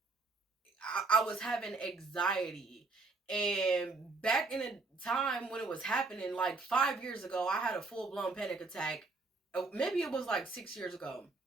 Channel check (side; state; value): left; quieter; 3.7 dB